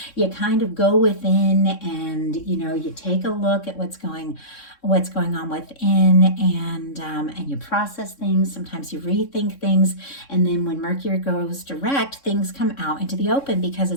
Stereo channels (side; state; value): right; late; 3.6 ms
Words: you kind of go within and, you know, you take a look at what's going on within, and you process things. Sometimes you rethink things, and then when Mercury goes direct, things come out into the open because